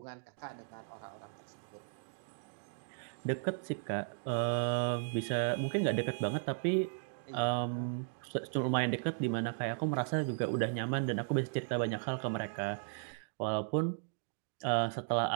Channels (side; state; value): left; silent; digital silence